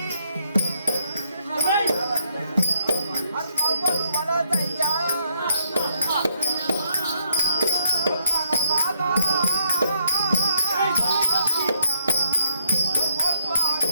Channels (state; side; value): inverted; both; correlation -0.75